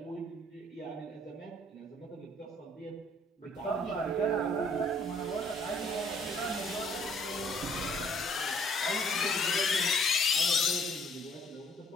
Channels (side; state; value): both; normal; correlation 0.61